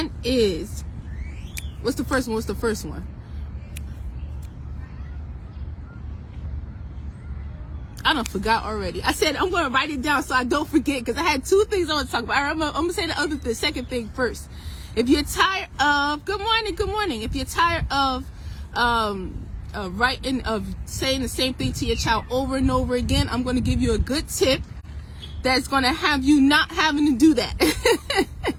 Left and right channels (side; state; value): both; identical; correlation 1.00